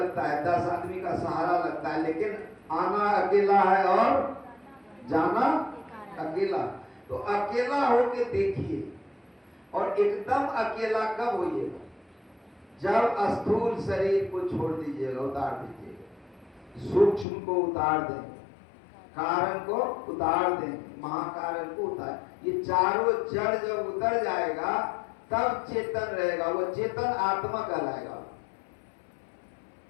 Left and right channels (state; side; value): drops out; right; at 17.2 s